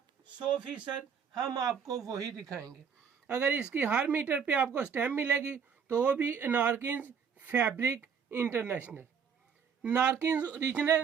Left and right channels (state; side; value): quieter; left; 6.8 dB